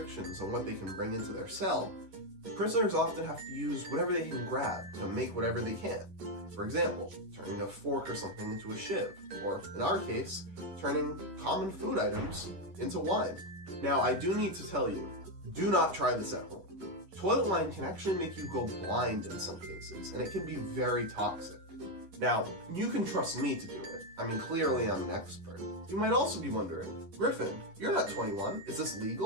on what they can bring into their cell, prisoners often have to use whatever they can grab to make whatever they can. For example, turning a fork or something into a shiv, or in our case, turning common food items into wine. Now, I do need to tell you, do not try this at home. Toilet wine can actually make you go blind in some cases, and it can be very toxic. Now, you can trust me to do it. I mean, clearly I'm an expert. You might also be wondering, Griffin, you're not 21. Is this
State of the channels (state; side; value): late; left; 10 ms